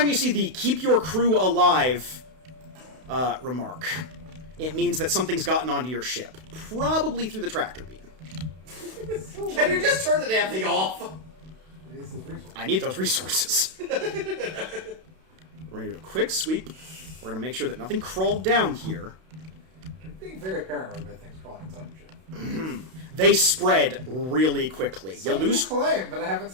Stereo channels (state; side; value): late; left; 32 ms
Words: you see the "keep your crew alive" remark, it means that something's gotten onto your ship. Probably through the tractor beam. Can you just turn the damn thing off? I need those resources. We're going to do a quick sweep. We're going to make sure that nothing crawled down here. I'm being very paranoid about things crawling inside the ship. They spread really quickly. Some You lose claim, but I haven't